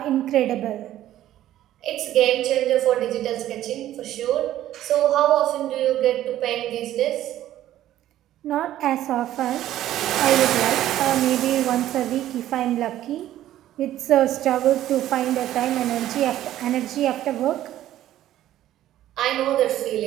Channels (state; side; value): quieter; left; 13.1 dB